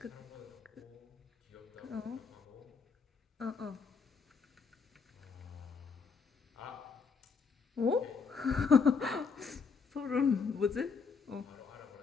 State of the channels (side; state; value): right; quieter; 5.4 dB